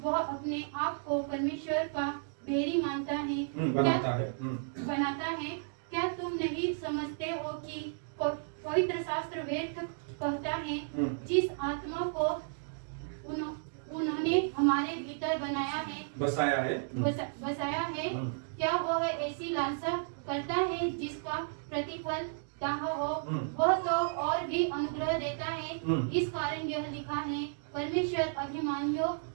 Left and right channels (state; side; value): silent; left; digital silence